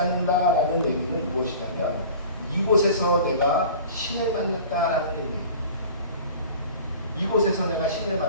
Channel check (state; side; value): inverted; both; correlation -0.41